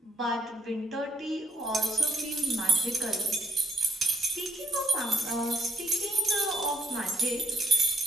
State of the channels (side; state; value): both; normal; correlation 0.71